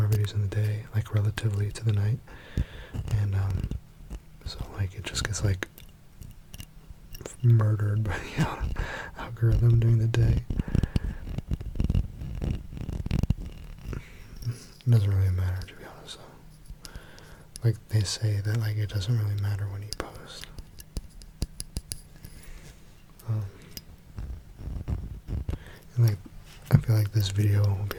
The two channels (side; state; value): both; identical; correlation 1.00